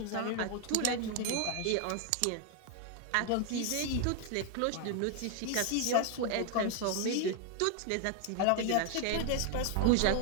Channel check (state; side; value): different; both; correlation 0.00